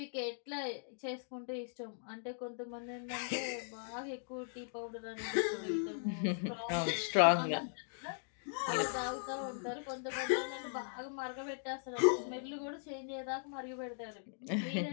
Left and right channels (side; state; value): right; silent; digital silence